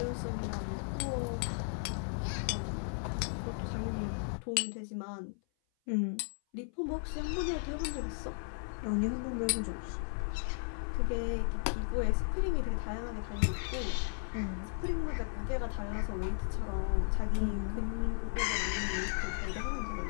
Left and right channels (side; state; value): right; silent; 54 dB below the other